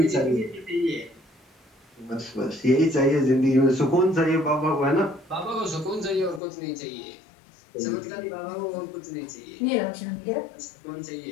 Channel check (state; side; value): drops out; right; at 6.4 s